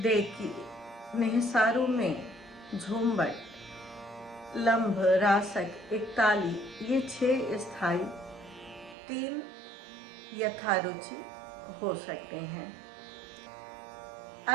देखी, निहसारू में झूमबट, लंब, रासक, एकताली, ये 6 स्थायी, 3 यथारुचि हो सकते हैं।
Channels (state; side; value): drops out; left; at 9.0 s